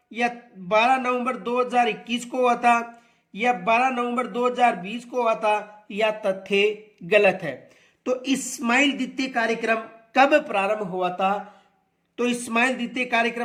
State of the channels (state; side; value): identical; both; correlation 1.00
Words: या 12 नवंबर 2021 को हुआ था, या 12 नवंबर 2020 को हुआ था, या तथ्य गलत है? तो इस्माइल द्वितीय कार्यक्रम कब प्रारंभ हुआ था? तो इस्माइल द्वितीय